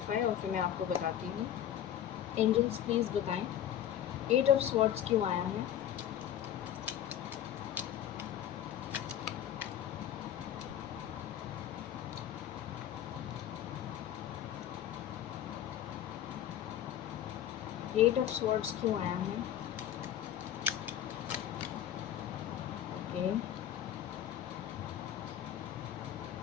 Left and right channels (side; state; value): right; quieter; 10.8 dB